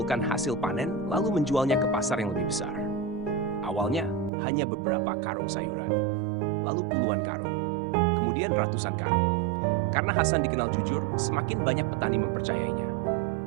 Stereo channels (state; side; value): drops out; left; at 4.3 s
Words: hasil panen, lalu menjualnya ke pasar yang lebih besar. Awalnya, hanya beberapa karung sayuran, lalu puluhan karung, kemudian ratusan karung. Karena Hasan dikenal jujur, semakin banyak petani mempercayainya.